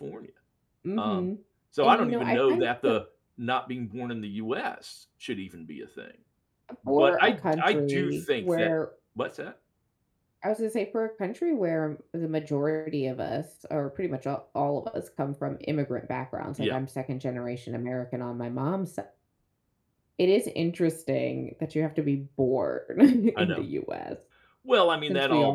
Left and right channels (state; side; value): identical; both; correlation 1.00